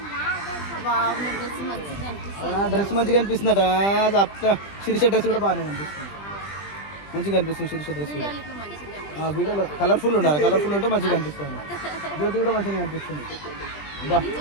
Dress మంచిగా అనిపిస్తుందట. శిరీష డ్రెస్ కూడా బాగానే అనిపిస్తుంది, మంచిగా అనిపిస్తుంది శిరీష డ్రెస్ కూడా. వీడియోలో కలర్ఫుల్ ఉండాలి, కలర్ఫుల్ ఉంటే మంచిగా అనిపిస్తుంది. జ్యోతి కూడా మంచిగా అనిపిస్తుంది. బా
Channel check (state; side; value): late; right; 20 ms